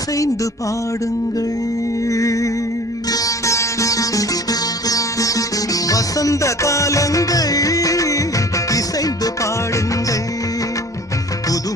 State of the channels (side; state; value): both; normal; correlation 0.46